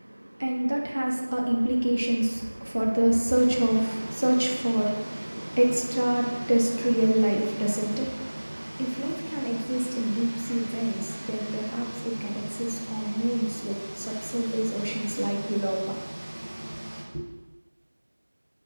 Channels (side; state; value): both; inverted; correlation -1.00